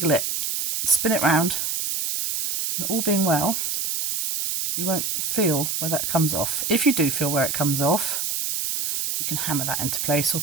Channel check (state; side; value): noise; right; hiss, 1 dB below the sound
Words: it, spin it round, and all being well, you won't feel where that comes off. If you do feel where it comes off, you can hammer that into place or